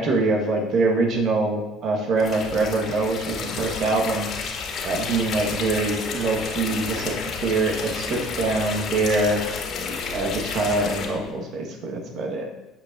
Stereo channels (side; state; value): both; normal; correlation 0.52